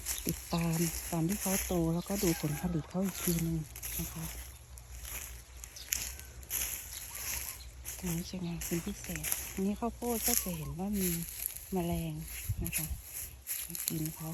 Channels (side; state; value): both; identical; correlation 1.00